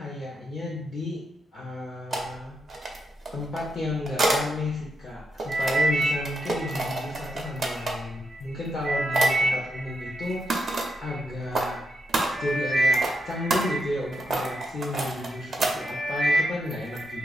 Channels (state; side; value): normal; both; correlation 0.83